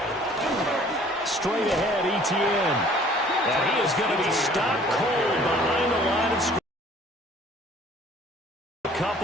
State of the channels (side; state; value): both; normal; correlation 0.54